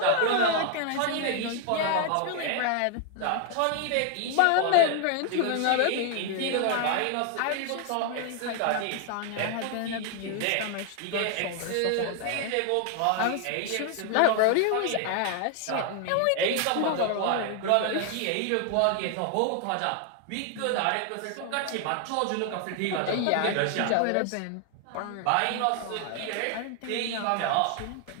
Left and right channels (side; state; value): both; different; correlation 0.00